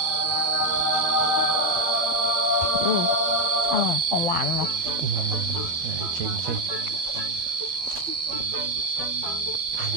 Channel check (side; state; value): left; late; 12 ms